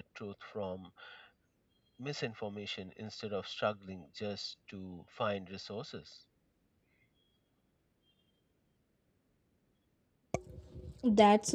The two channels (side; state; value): both; identical; correlation 1.00